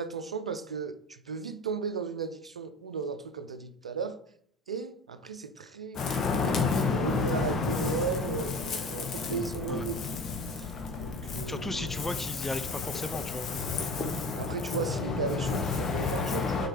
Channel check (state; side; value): normal; both; correlation 0.34